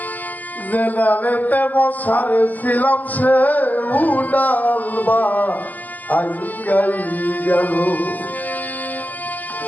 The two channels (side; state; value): right; late; 0.082 ms